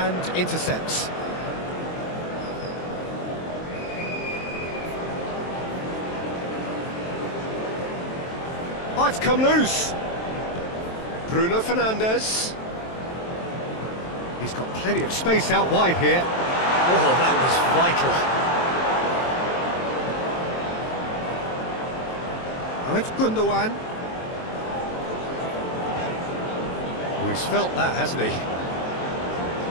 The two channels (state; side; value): late; right; 23 ms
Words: intercepts. Might come loose. Bruno Fernandes. He's got plenty of space out wide here. Oh, that was vital. Now it's Gundogan. Oh, he's felt that, hasn't he?